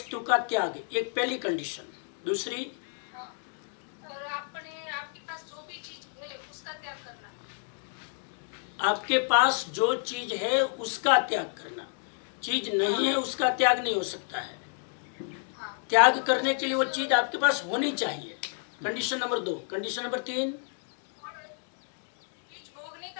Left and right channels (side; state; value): right; silent; 58 dB below the other